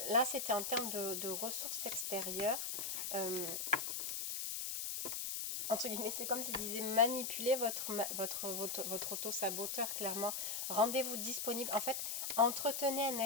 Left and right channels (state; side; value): noise; left; hiss, 2 dB below the sound